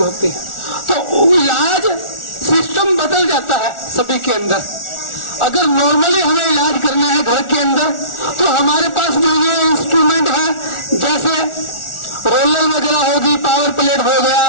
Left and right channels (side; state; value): right; late; 1.4 ms